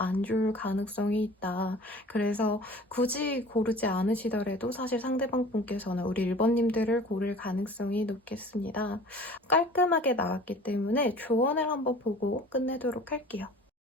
좋을 가능성이 있다. 그래서 굳이 고르지 않으시더라도 사실 상대방 분께서는 우리 1번님들을 고를 가능성이 높겠습니다. 깔끔하게 나왔기 때문에 조언을 한번 보고 끝내도록 할게요.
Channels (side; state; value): both; normal; correlation 0.44